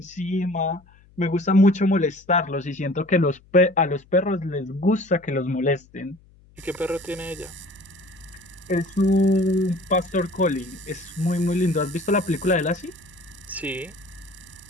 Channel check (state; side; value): noise; left; hum, 28 dB below the sound